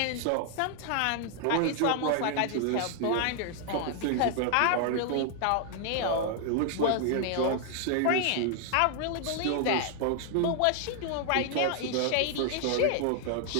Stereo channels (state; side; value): different; both; correlation 0.00